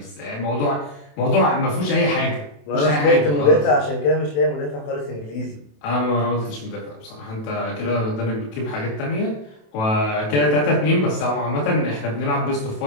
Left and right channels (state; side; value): late; right; 27 ms